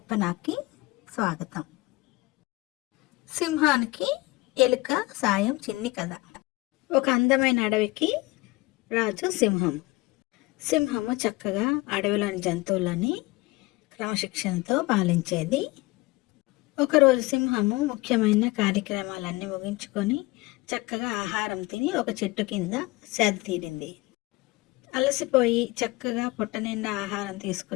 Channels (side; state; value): right; quieter; 22.1 dB